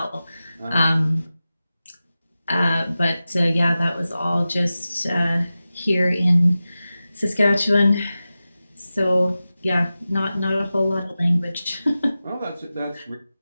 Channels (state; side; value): inverted; both; correlation -0.95